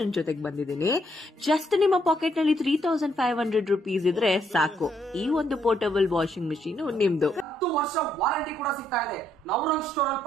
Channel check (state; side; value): normal; both; correlation 0.73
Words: ಜೊತೆಗೆ ಬಂದಿದ್ದೀನಿ. ಜಸ್ಟ್ ನಿಮ್ಮ ಪಾಕೆಟ್ ನಲ್ಲಿ 3500 rupees ಇದ್ರೆ ಸಾಕು, ಈ ಒಂದು ಪೋರ್ಟಬಲ್ ವಾಷಿಂಗ್ ಮಿಷಿನ್ ನಿಮ್ದು. 10 ವರ್ಷ ವಾರಂಟಿ ಕೂಡ ಸಿಗ್ತಾ ಇದೆ. ನವರಂಗ್ ಸ್ಟೋರ್ ಅಲ್ಲಿ